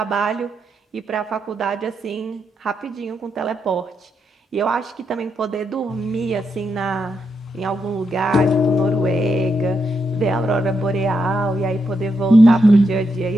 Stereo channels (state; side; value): normal; both; correlation 0.82